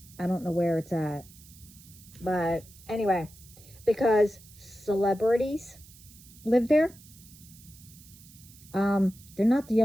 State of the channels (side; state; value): right; noise; hiss, 22 dB below the sound